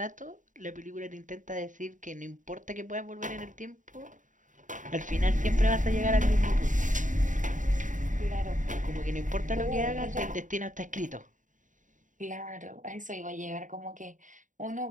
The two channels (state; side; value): late; left; 0.37 ms